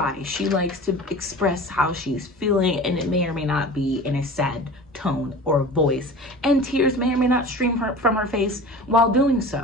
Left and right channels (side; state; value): both; normal; correlation 0.37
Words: She likes to express how she's feeling, and it may or may not be in a sad tone or voice, and tears may or may not stream from her face while doing